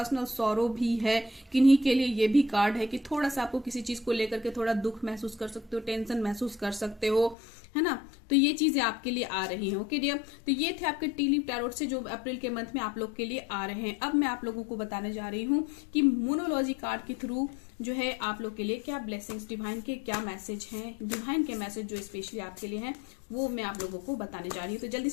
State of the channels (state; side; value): drops out; right; at 7.4 s